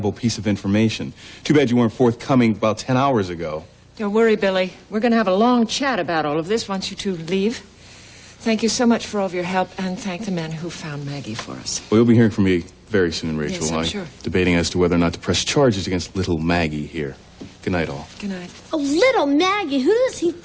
piece of information. Too bad you weren't forthcoming about 10 hours ago. Don't worry, Billy. We're going to have a long chat about all of this once you two leave. Thank you so much for all of your help, and thank the men who found Maggie for us. Well, you'll be hearing from me very soon, Rachel. Yes, I'm sure. Debating as to whether or not to press charges against little Maggie here. Good night, all. Good night. Oh, little Maggie. Who does he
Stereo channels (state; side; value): identical; both; correlation 1.00